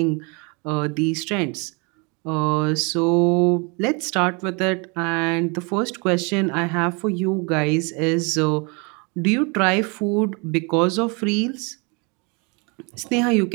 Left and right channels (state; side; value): quieter; left; 31.4 dB